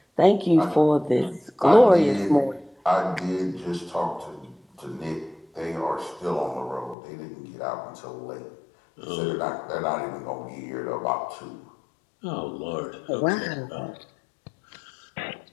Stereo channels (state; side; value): drops out; right; at 7.0 s